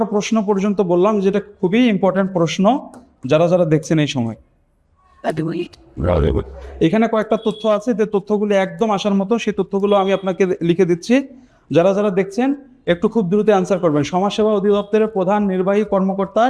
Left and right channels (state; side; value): identical; both; correlation 1.00